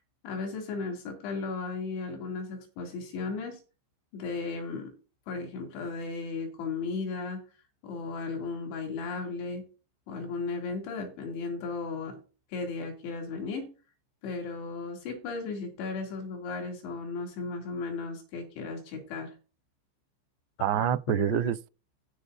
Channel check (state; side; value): late; right; 15 ms